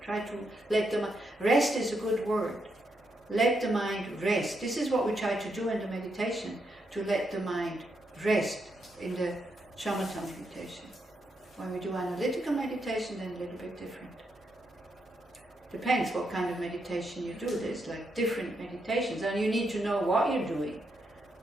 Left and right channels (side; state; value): both; normal; correlation 0.81